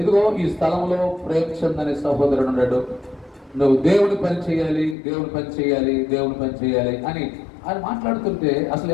ఇదిగో ఈ స్థలంలో ప్రేమచంద్ అనే సహోదరుడు ఉన్నాడు, నువ్వు దేవుని పని చేయాలి, దేవుని పని చేయాలి, దేవుని పని చేయాలి అని ఆయన మాట్లాడుతుంటే అసలు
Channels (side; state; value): right; drops out; at 5.0 s